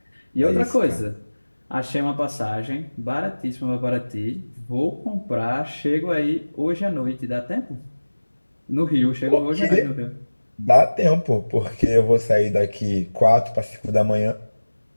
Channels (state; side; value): inverted; both; correlation -1.00